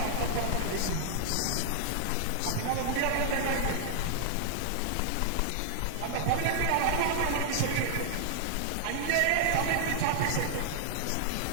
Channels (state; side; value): different; both; correlation -0.01